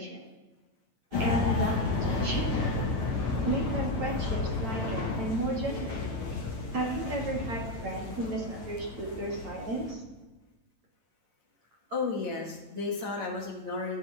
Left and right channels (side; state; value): left; late; 8.9 ms